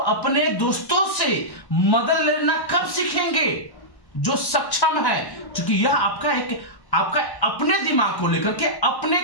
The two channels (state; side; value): late; right; 1.2 ms